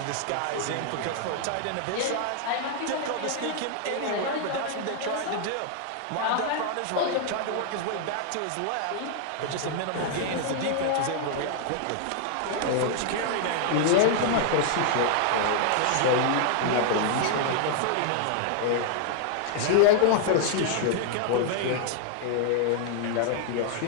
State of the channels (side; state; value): both; different; correlation -0.01